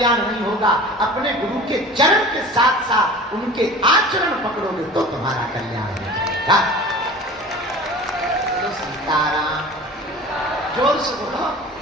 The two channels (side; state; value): both; normal; correlation 0.39